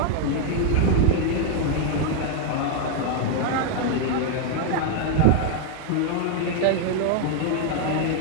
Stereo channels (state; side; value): different; both; correlation 0.00